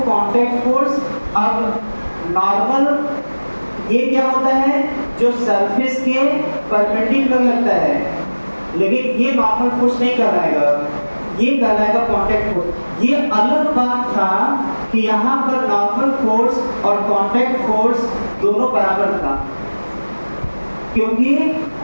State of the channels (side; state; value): both; inverted; correlation -1.00